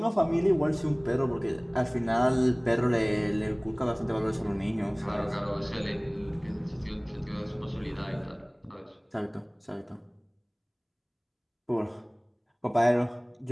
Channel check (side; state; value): both; identical; correlation 1.00